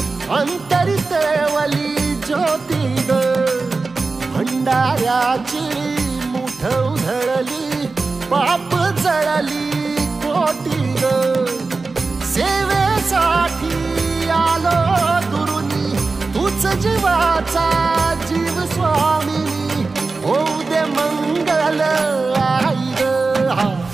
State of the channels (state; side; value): quieter; left; 3.9 dB